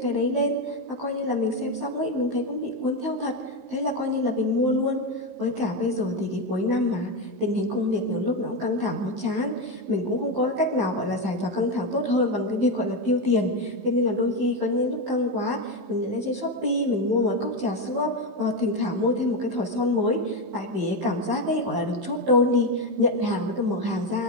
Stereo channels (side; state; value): left; late; 15 ms